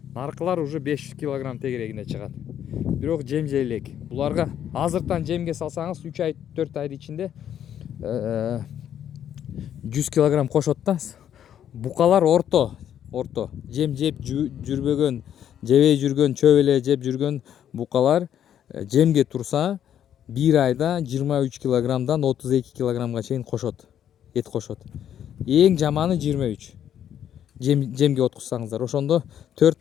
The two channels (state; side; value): quieter; right; 10.0 dB